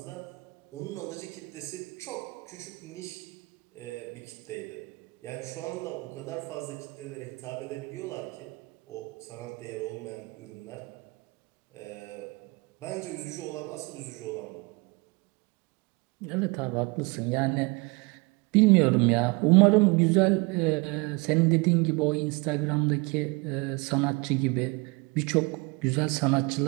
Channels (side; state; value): left; quieter; 26.9 dB